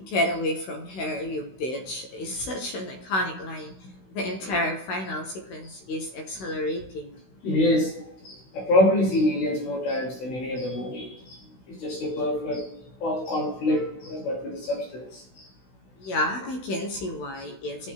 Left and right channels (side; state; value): right; late; 16 ms